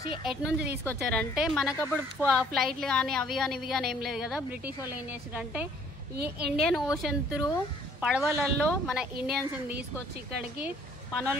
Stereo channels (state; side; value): normal; both; correlation 0.60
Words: ఎటు నుంచి తీసుకొచ్చారంటే, మనకప్పుడు ఫ్లైట్లు కానీ అవి కానీ ఇవి కానీ ఏం లేదు కదా. బ్రిటిష్ వాళ్ళు ఏం చేశారంటే ఈ ఇండియన్ ఓషన్ త్రూ పడవలలో మన ఇండియన్స్ ని తీసుకొచ్చి ఇక్కడికి